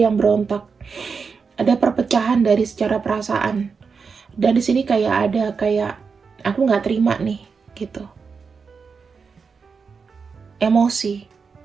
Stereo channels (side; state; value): left; quieter; 5.3 dB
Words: berontak. Ada perpecahan dari secara perasaan. Dan di sini kayak aku nggak terima nih, gitu. Emosi.